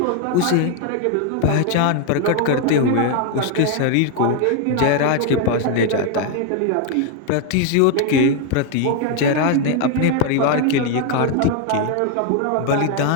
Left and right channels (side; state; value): both; different; correlation 0.01